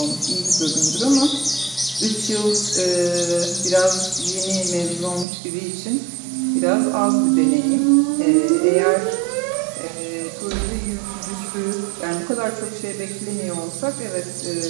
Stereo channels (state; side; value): drops out; left; at 5.2 s